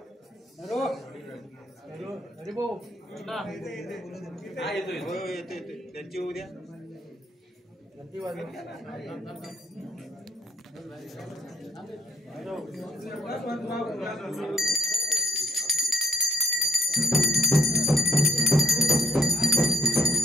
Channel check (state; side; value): normal; both; correlation 0.68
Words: अरे भाऊ त्यांची उद्या